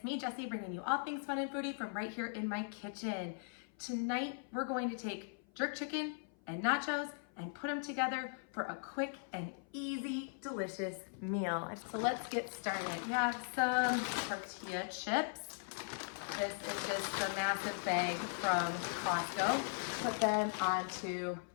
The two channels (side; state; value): right; silent; 52 dB below the other